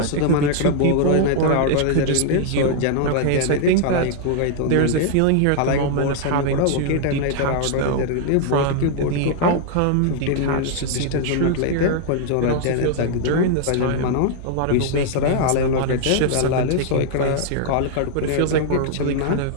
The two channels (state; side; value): different; both; correlation 0.00